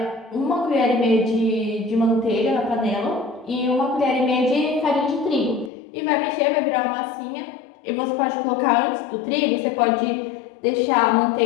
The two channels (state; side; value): drops out; right; at 5.7 s